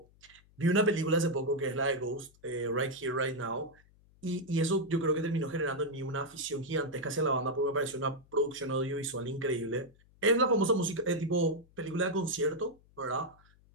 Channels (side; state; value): left; noise; hum, 29 dB below the sound